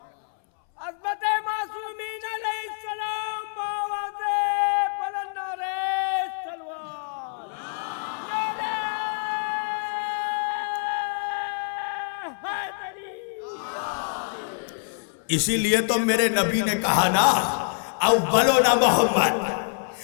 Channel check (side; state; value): right; silent; 61 dB below the other